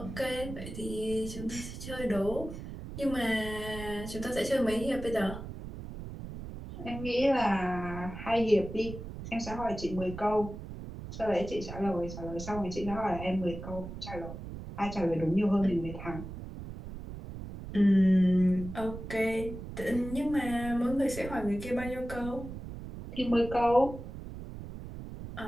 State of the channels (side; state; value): right; noise; rumble, 10 dB below the sound